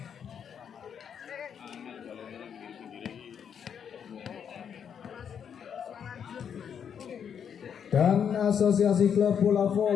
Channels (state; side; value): quieter; right; 7.8 dB